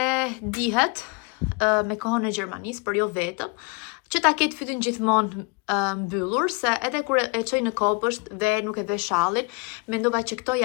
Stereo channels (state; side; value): quieter; right; 30.7 dB